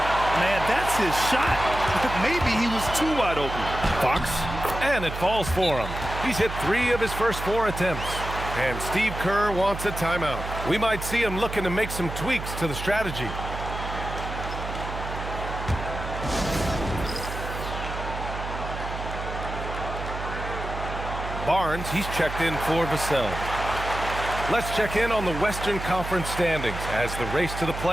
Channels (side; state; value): right; noise; hum, 7 dB below the sound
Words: Man, that's his shot. Maybe he was too wide open. Fox, and it falls for him. He's hit 3 of his first 4 attempts. And Steve Kerr wants a timeout. We might see him looking to make some tweaks to the strategy. Barnes, he's checked in for Vassell. Let's check in on the Western Conference standings as the race to the